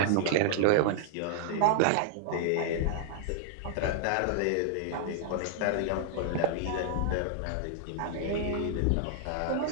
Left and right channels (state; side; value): different; both; correlation -0.01